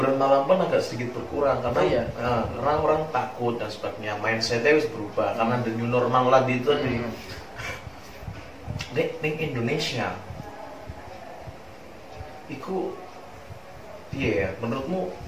malam pun agak sedikit berkurang karena karena orang takut dan sebagainya, mindsetnya harus berubah karena the new normal lagi itu di Indonesia. Iku iya, menurutmu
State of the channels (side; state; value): both; identical; correlation 1.00